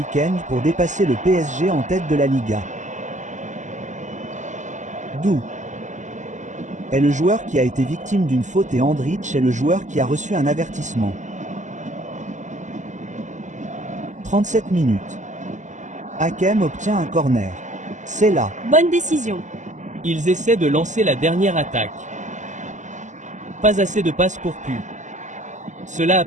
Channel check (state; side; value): late; left; 0.35 ms